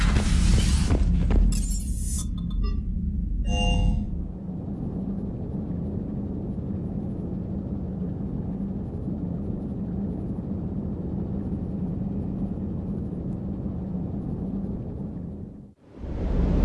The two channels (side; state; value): both; identical; correlation 1.00